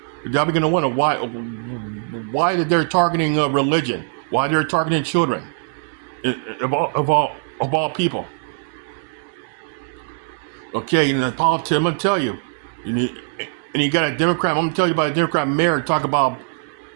y'all begin to wonder why they're targeting religion, why they're targeting children, of all people. Okay, and the politics, I'm gonna tell you, and you got a Democrat. I'm gonna tell you about a Democrat mayor talk about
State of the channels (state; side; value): silent; left; 59 dB below the other